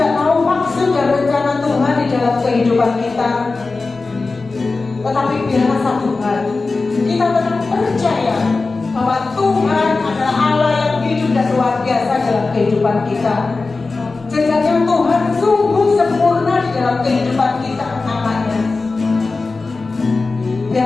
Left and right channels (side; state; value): right; quieter; 3.8 dB